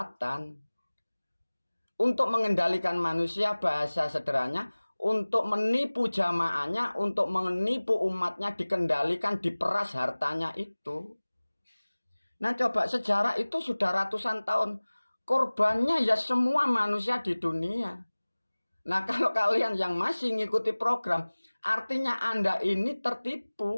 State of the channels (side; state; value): both; inverted; correlation -1.00